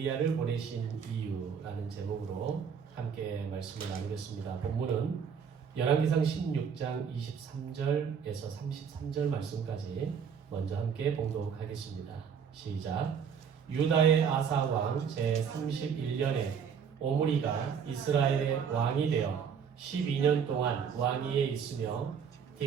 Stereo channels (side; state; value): left; quieter; 7.0 dB